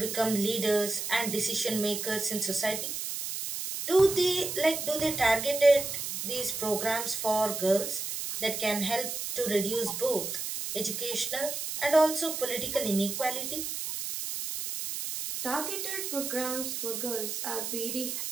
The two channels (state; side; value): noise; right; hiss, 4 dB below the sound